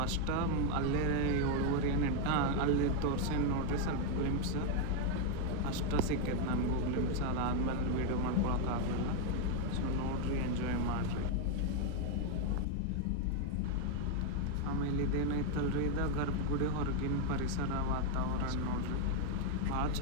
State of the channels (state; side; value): different; both; correlation 0.01